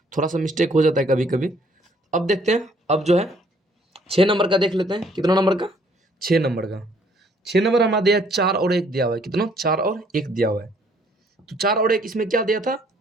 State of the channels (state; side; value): normal; both; correlation 0.63